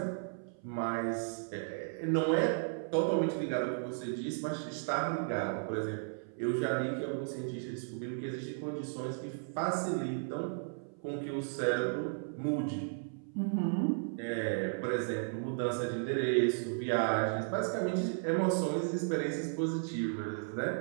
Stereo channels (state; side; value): silent; left; 55 dB below the other